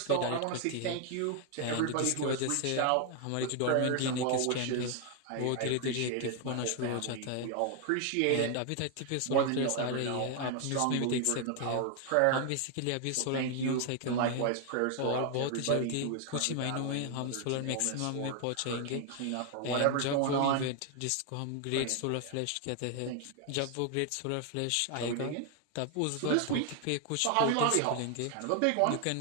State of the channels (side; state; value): both; different; correlation 0.00